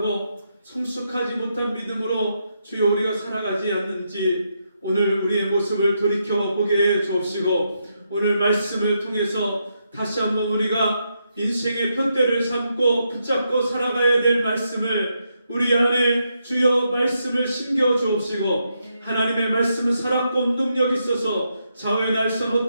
성숙하지 못한 믿음으로 주여 우리가 살아가지 않는지 오늘 우리의 모습을 돌이켜 보게 해 주옵시고, 오늘 말씀을 통해서 다시 한번 우리가 인생의 푯대를 삼고 붙잡고 살아가야 될 말씀을 우리 안에 주여 말씀을 심겨 주옵시고, 하나님의 말씀은 살았고 운동력 있어서 좌우의 날선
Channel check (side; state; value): both; inverted; correlation -0.81